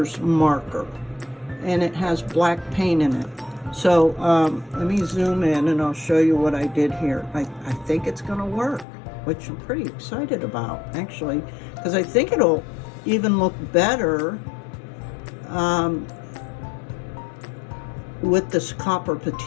marker, and it has black paint in it. So let me zoom in and I'll show you what I did here. I think it's gonna work, which I'm pretty excited about, actually, because I think it'll even look better with this copper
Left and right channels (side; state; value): right; drops out; at 8.8 s